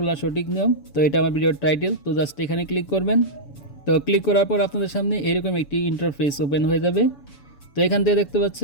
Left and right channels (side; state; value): right; late; 7.0 ms